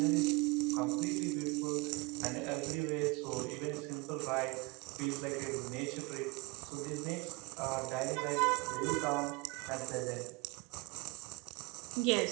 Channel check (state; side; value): quieter; left; 26.3 dB